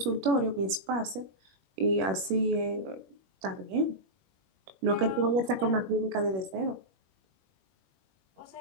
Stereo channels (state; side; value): late; left; 21 ms